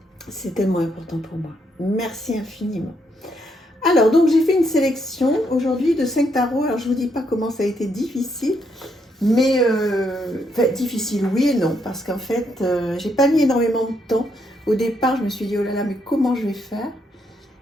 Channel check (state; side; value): normal; both; correlation 0.75